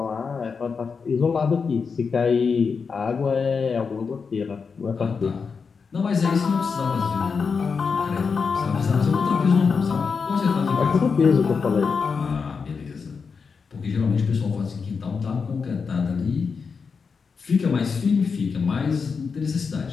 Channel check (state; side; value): quieter; right; 5.4 dB